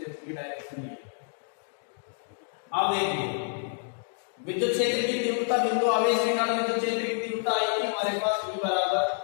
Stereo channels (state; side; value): silent; right; digital silence